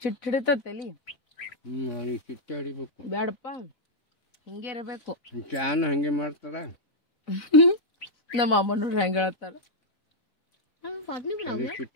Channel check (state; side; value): late; right; 4.0 ms